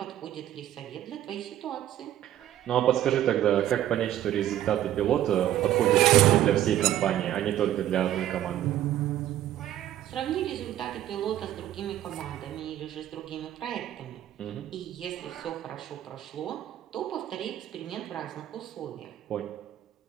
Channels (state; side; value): quieter; left; 12.5 dB